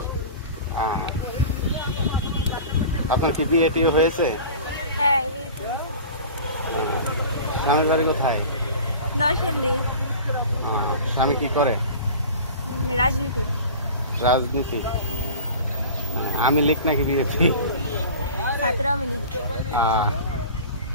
পড়ে। আপনার কি বিয়ে টিয়ে হয়েছে? হ্যাঁ, বিয়ে তো। স্বামীর বাড়ি কোথায়? নরসিংদী। স্বামী কি করে? রাজনীতি। রাজনীতি। আমি লিখ নাকি বিয়েছি? ছাত্র আমি লিখ।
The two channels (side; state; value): both; inverted; correlation -0.38